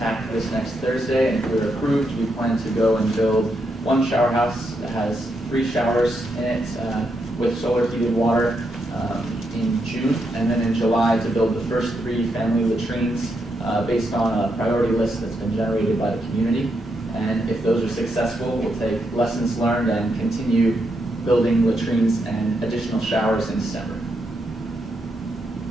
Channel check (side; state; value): both; normal; correlation 0.81